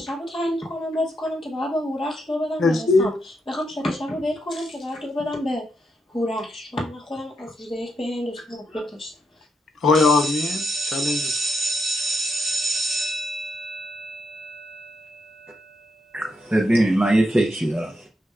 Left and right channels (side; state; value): both; normal; correlation 0.81